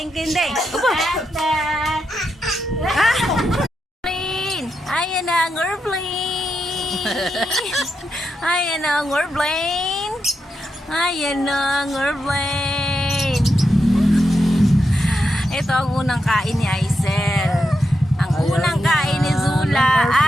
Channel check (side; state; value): both; normal; correlation 0.85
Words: ding ding. Ayan na ang airplane. Ayan na ang airplane. Ayan na ang airplane. Ito ang unang kain ni Aisel. Ang unang kain ni Zula.